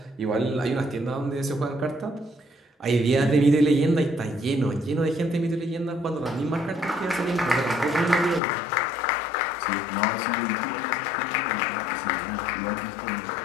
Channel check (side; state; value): right; drops out; at 8.4 s